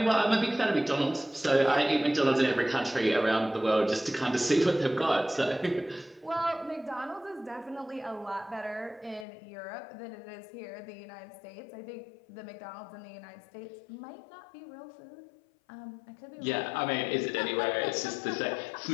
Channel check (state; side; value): drops out; right; at 9.2 s